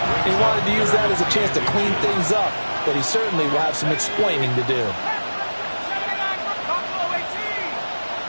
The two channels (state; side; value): inverted; both; correlation -1.00